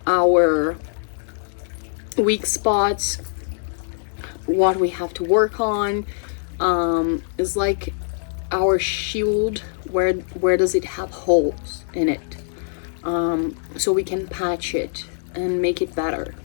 our weak spots, what we have to work on. Is like our shield, where does it have holes in it, so we can patch it and make it better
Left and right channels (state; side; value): silent; right; digital silence